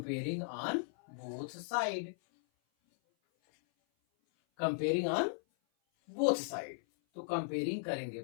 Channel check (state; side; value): silent; right; 53 dB below the other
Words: on both side, comparing on both side, तो कंपेयरिंग करेंगे